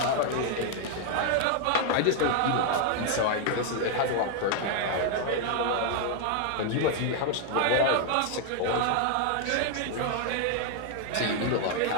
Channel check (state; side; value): different; both; correlation 0.00